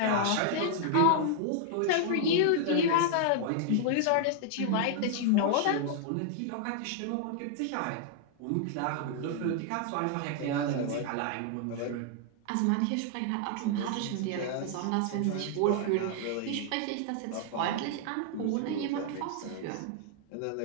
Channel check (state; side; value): different; both; correlation 0.00